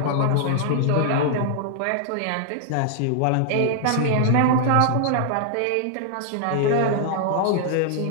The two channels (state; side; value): different; both; correlation -0.01